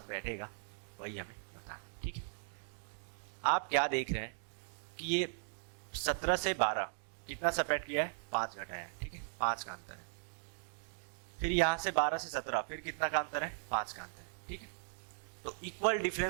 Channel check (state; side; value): silent; left; digital silence